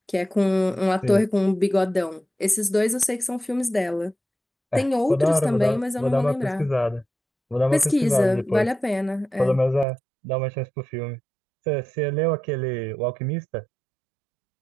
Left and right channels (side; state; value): left; drops out; at 9.9 s